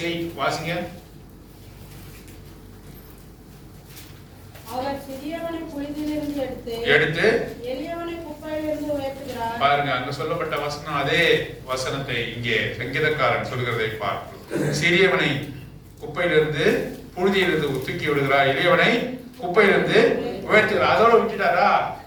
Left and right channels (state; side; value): identical; both; correlation 1.00